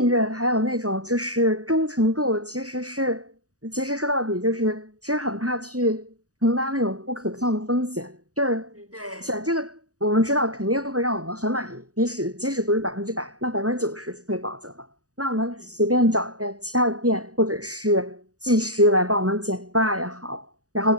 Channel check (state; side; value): late; left; 0.66 ms